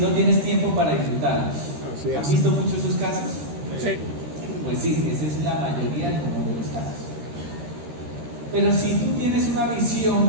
tienes tiempo para disfrutarlos? ¿Han visto muchos esos casos? Sí. Pues sí, esa es la mayoría de los casos. Pero si tú tienes una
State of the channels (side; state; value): left; late; 13 ms